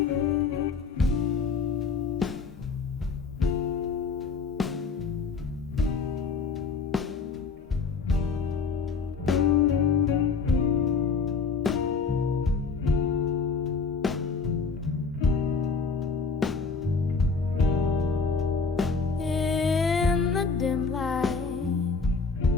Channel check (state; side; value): quieter; right; 4.9 dB